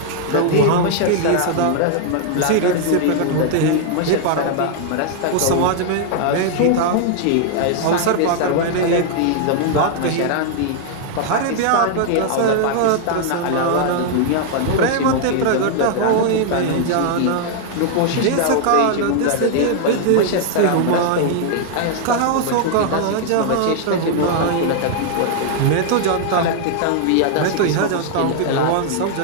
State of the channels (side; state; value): both; different; correlation 0.00